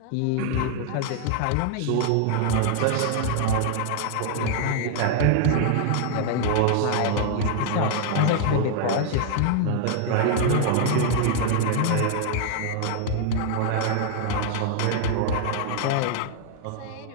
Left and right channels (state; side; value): different; both; correlation 0.00